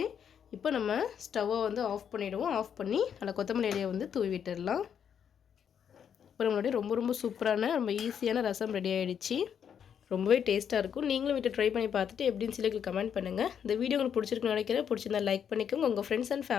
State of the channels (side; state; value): right; quieter; 8.1 dB